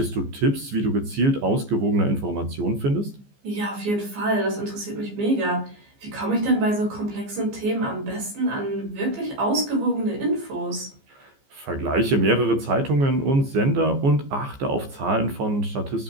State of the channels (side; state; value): left; late; 15 ms